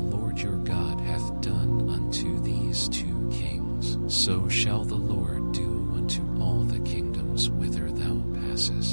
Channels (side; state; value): both; inverted; correlation -1.00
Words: your God hath done unto these two kings. So shall the Lord do unto all the kingdoms whither thou